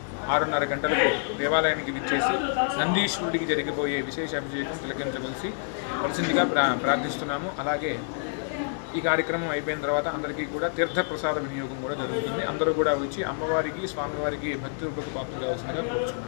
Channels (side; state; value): right; silent; 60 dB below the other